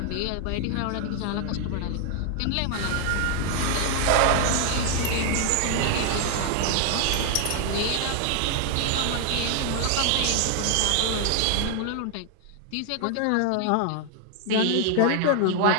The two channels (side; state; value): both; different; correlation 0.00